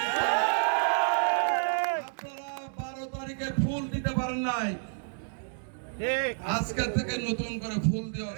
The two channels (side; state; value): left; silent; digital silence